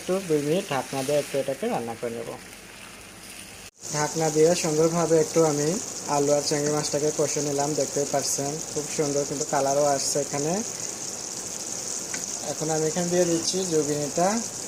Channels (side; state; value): both; identical; correlation 1.00